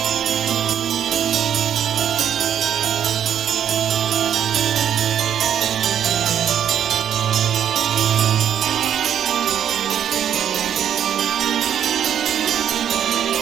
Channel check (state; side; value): quieter; left; 9.5 dB